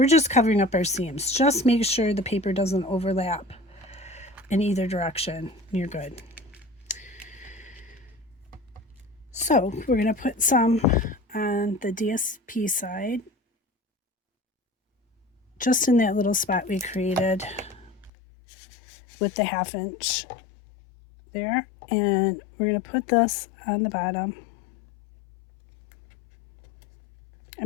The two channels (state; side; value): drops out; right; at 18.1 s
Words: just covering up our seams. Just make sure the paper doesn't overlap in either direction. You're good. So we're going to put some on the DSP side, just in that little spot we created with the 1/2 inch there. And we're going to put this on the bottom. I'm